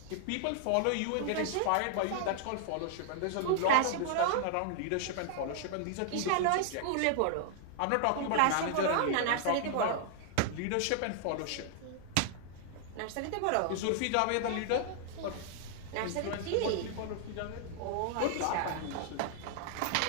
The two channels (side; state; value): both; different; correlation -0.01